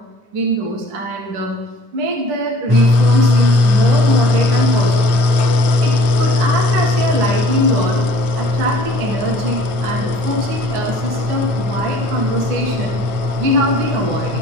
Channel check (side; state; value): left; late; 9.0 ms